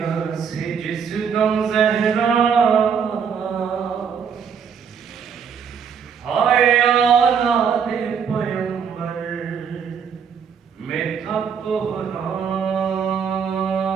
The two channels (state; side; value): quieter; left; 7.0 dB